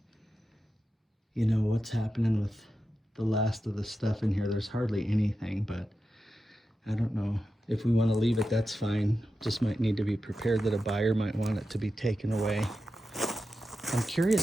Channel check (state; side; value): normal; both; correlation 0.90